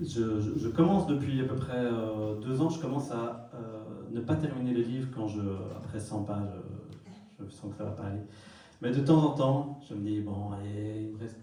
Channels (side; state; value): both; identical; correlation 1.00